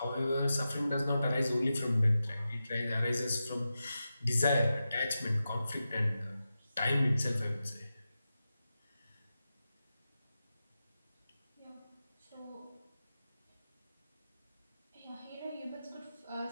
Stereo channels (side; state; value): both; inverted; correlation -0.91